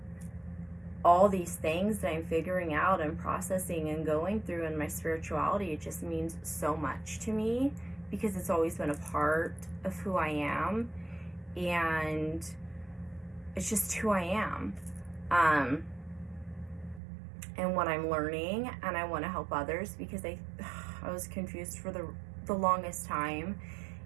all these things that I'm figuring out and processing and going through in my spirituality, it just means so much to me because it's always been a part of who I am, and it's just who I am, and what I'm learning, and I want to help others because I was confused for the longest time,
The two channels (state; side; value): drops out; left; at 17.0 s